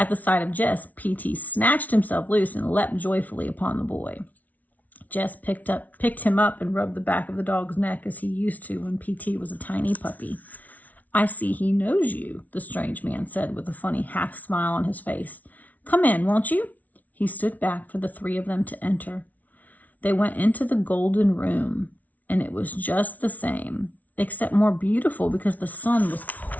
the sight of Jess, P.T. snatched himself loose and leapt joyfully upon the boy. Jess picked him up and rubbed the back of the dog's neck as he used to when P.T. was a tiny puppy. "I see he knows you," the strange man said with a funny half smile on his face. "Come in, won't you?" He stood back for the 3 of them to enter. They went into the golden room, and it was just the same, except more beautiful because the sun was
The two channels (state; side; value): late; right; 0.074 ms